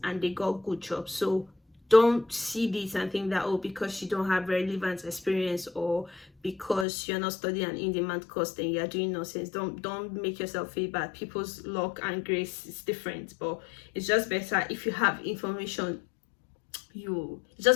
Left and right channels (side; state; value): right; drops out; at 6.9 s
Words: and they got good jobs. So don't see this and think that, oh, because you don't have relevant experience or because you're not studying an in-demand course, then you're doing nonsense. Don't make yourself feel bad. People's luck and grace is different, but it's just better if you have information. It's